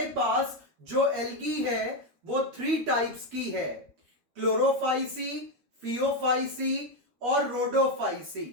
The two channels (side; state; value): left; late; 12 ms